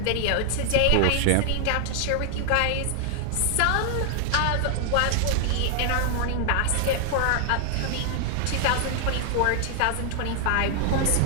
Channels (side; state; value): both; different; correlation 0.00